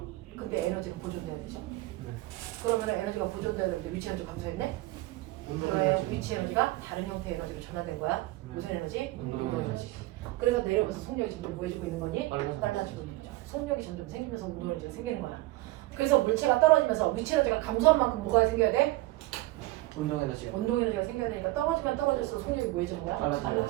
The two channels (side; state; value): left; quieter; 19.1 dB